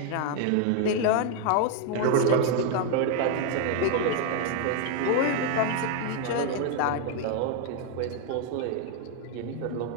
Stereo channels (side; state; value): both; different; correlation 0.00